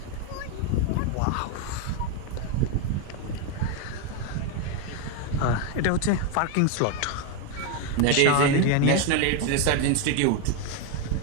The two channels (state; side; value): different; both; correlation 0.02